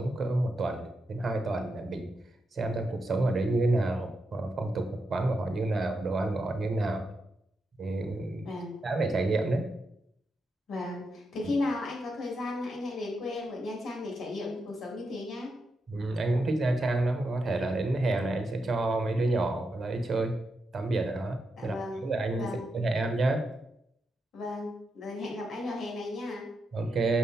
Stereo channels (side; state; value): both; normal; correlation 0.85